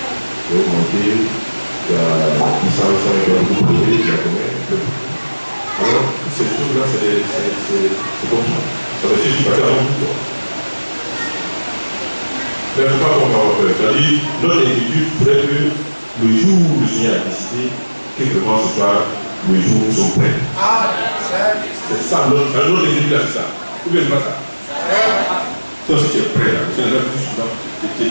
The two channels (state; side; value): inverted; both; correlation -1.00